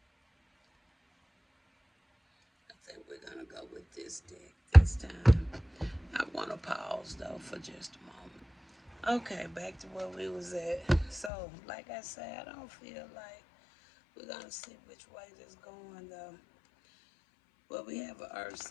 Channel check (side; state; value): right; drops out; at 11.3 s